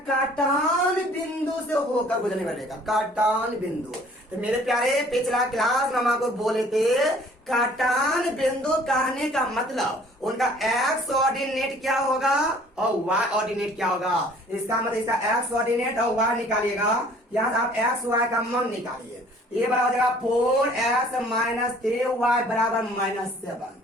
काटान बिंदु से होकर गुजरने वाले रेखा, काटान बिंदु। तो मेरे प्यारे पिछला क्लास में हम आपको बोले थे काटान बिंदु कहने का मतलब उनका एक्स ऑर्डिनेट क्या होगा और वाई ऑर्डिनेट क्या होगा। इसका मतलब इसका एक्स ऑर्डिनेट और वाई निकालिएगा, यहाँ आप एक्स वाई का मान निकालिए। ये बराबर हो जाएगा 4x माइनस 3y बराबर -7।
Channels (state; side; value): normal; both; correlation 0.54